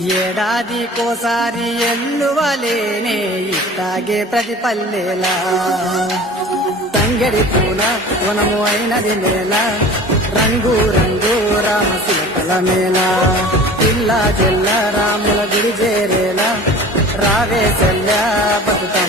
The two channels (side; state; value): both; normal; correlation 0.41